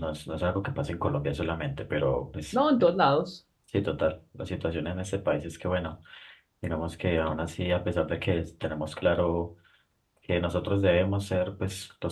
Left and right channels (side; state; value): both; identical; correlation 1.00